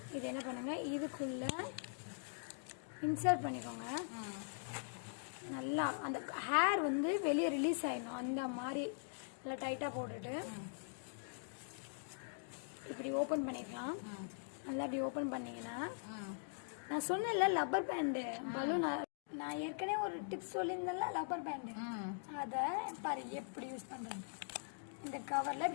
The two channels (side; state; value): right; silent; digital silence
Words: இது என்ன பண்ணுங்க, இதுக்குள்ள இன்சர்ட் பண்ணிக்கோங்க. நல்லா அந்த ஹேர் வெளியே ரிலீஸ் ஆயிடும். அந்த மாதிரி நல்லா டைட்டா போட்டுட்டு இப்படி ஓபன் பண்ணிக்கலாம். நல்லா இப்படி ஓபன் பண்ணீங்கன்னா, நான் சொன்னேன்ல லப்பர் பேண்ட் பலூன், நான் ஏற்கனவே ஒரு டிப்ஸ் சொல்லியிருந்தேன்ல லப்பர் பேண்ட், அத பாரு எப்படி யூஸ் பண்றேன். இந்த கவர்ல